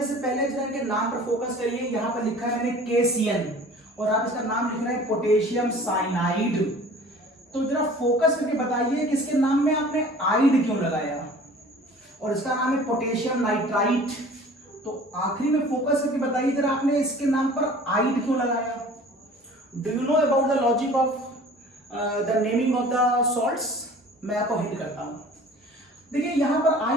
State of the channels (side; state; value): both; normal; correlation 0.46